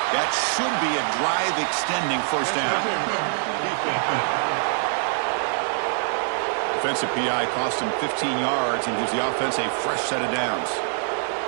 That should be a drive-extending 1st down. Defensive PI cost him 15 yards and gives the offense a fresh set of downs.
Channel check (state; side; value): silent; left; digital silence